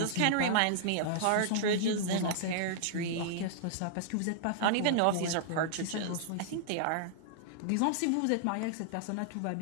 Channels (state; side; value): different; both; correlation -0.01